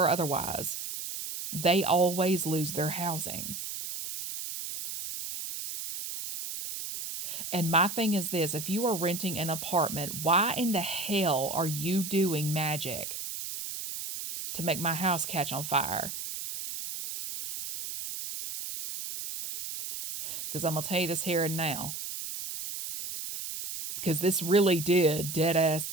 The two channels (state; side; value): noise; right; hiss, 7 dB below the sound